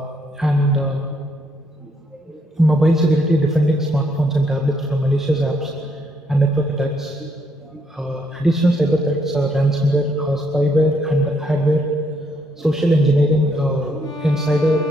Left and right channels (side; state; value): both; normal; correlation 0.72